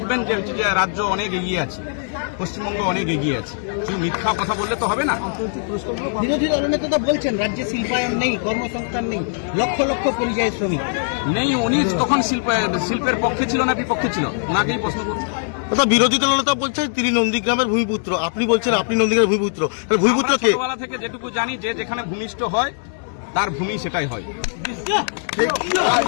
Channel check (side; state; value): right; silent; 65 dB below the other